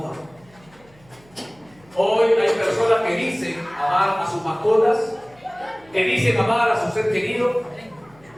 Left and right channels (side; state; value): right; noise; hum, 29 dB below the sound